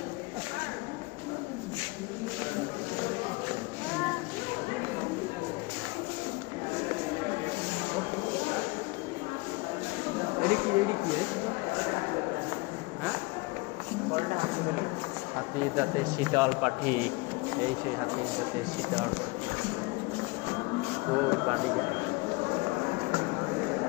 এডি কি হ্যাঁ হাতির দাঁতে শীতল পাখি এই সেই হাতির দাঁতে শীতল পাখি ওই পানি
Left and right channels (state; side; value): quieter; right; 25.5 dB